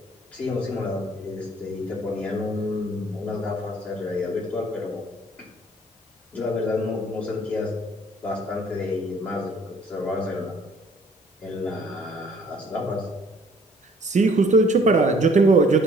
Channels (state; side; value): normal; both; correlation 0.58